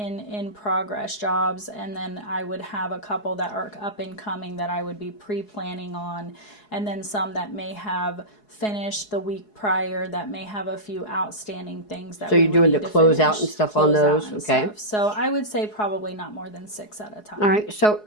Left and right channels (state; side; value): late; right; 4.7 ms